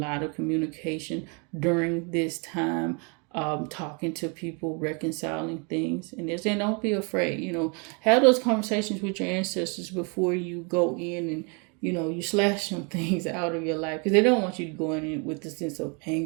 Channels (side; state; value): left; quieter; 34.2 dB